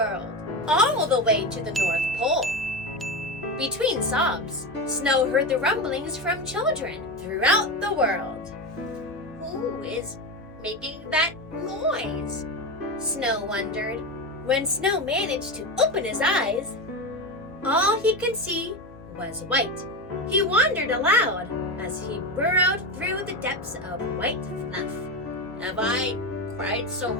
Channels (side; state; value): both; normal; correlation 0.18